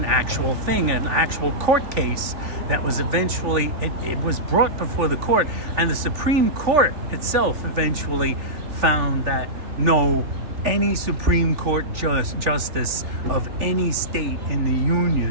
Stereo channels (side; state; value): left; late; 3.4 ms